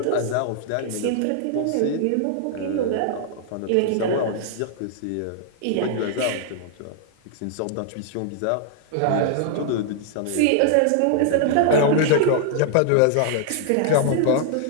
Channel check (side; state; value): both; different; correlation -0.01